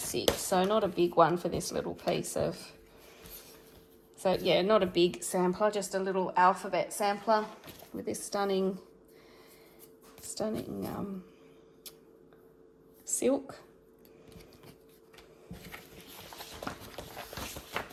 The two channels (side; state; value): both; identical; correlation 1.00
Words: So not a big one for this little piece of, so yeah, not a big sampler, just a little alphabet sampler with this stunning silk.